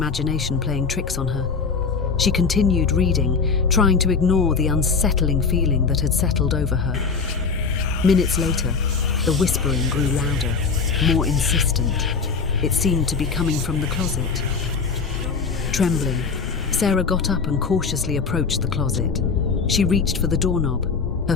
playing tricks on her. She continued reading, trying to ignore the unsettling feeling that had settled over her. Minutes later, the whispering grew louder, more insistent. It seemed to be coming from the closet. Trembling, Sarah got up and cautiously approached the closet. She reached for the doorknob, her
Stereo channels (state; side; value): quieter; right; 5.1 dB